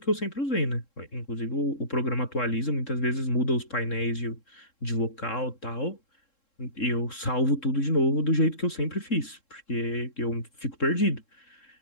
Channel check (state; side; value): late; right; 3.7 ms